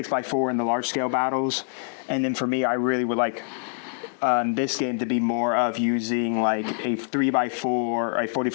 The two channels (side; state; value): right; silent; digital silence